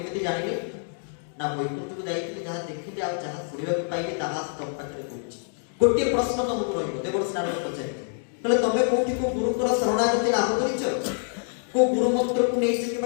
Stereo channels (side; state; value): right; silent; 61 dB below the other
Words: ଜାଣିଲେ? ନା ବୈକୁଣ୍ଠକୁ ଯାଇଥିଲେ, ଯାହା ଦେଖିଲେ ଆଉ ଯାହା ଶୁଣିବାକୁ ପାଇଲେ ତାହା ତମ ପାଖରେ କହୁଛି। ଗୋଟିଏ ପ୍ରଶ୍ନ ତମକୁ ରହିବ। ଦେବର୍ଷି ନାରଦ ପଚାରିଲେ, କହିଲେ ତମେ କୋଉଠି କୋଉ ଗୁରୁଙ୍କର ଶରଣାଗତି ଲାଭ କରିଛ? କୋଉ ଗୁରୁ ମନ୍ତ୍ରକୁ ନେଇଛ